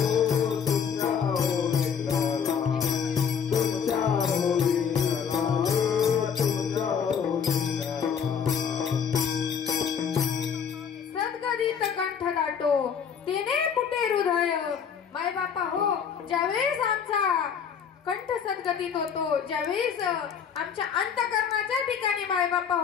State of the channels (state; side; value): quieter; right; 7.1 dB